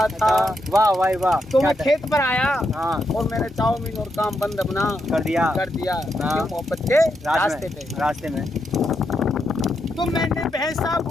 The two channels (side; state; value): both; normal; correlation 0.82